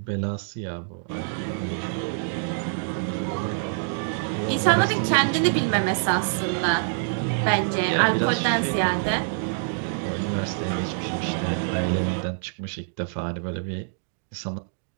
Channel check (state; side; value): silent; left; digital silence